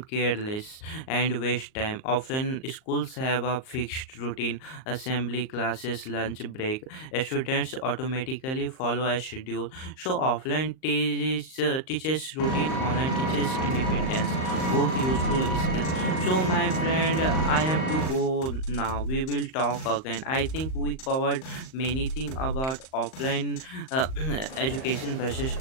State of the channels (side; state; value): right; late; 38 ms